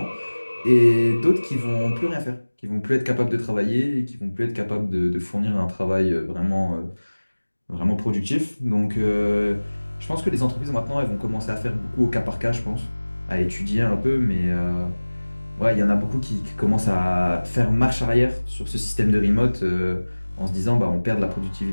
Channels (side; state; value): both; inverted; correlation -1.00